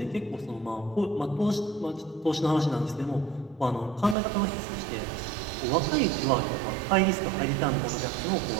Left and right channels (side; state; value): left; drops out; at 4.2 s